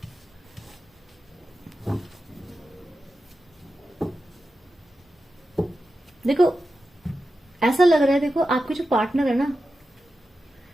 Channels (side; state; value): both; normal; correlation 0.91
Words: देखो ऐसा लग रहा है, देखो आपके जो पार्टनर है ना,